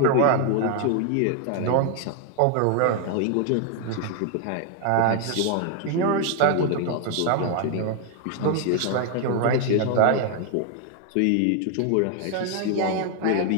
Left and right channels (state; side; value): different; both; correlation 0.00